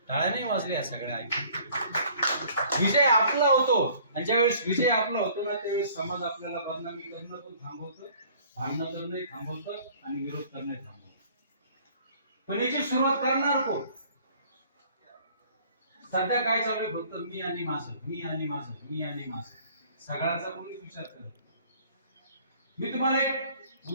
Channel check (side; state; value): both; inverted; correlation -0.54